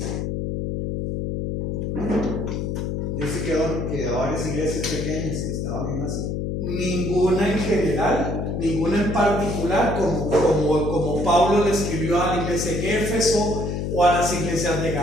Dice que a varias iglesias pequeñas que estaban en Asia. Ninguna en general, ninguna en particular, como Pablo le escribió a la iglesia en Éfeso, o a las iglesias de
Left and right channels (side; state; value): left; noise; hum, 2 dB below the sound